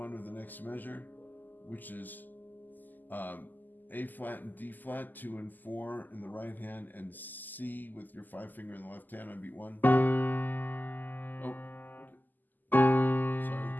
of the next measure, which is A flat and D flat, 2 and 4 in the right hand, and C with your 5 finger in the left hand on beat 1. Oh, sorry.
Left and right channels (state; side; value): late; right; 0.086 ms